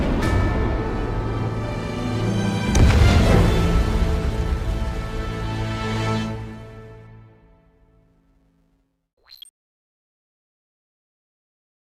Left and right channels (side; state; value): both; identical; correlation 1.00